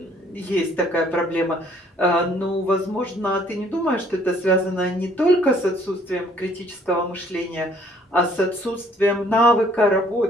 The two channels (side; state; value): both; normal; correlation 0.60